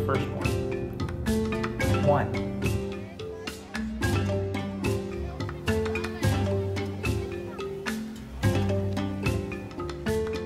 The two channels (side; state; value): both; identical; correlation 1.00